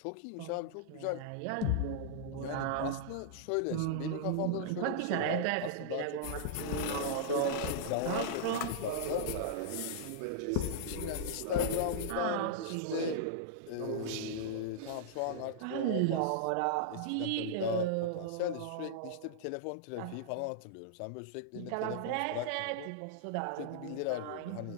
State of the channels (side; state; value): both; different; correlation -0.02